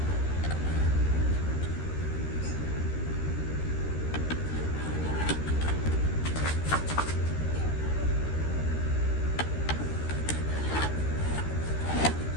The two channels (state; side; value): late; right; 13 ms